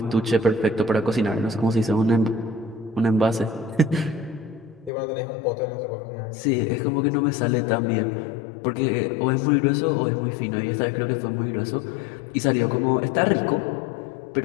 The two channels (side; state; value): right; drops out; at 4.9 s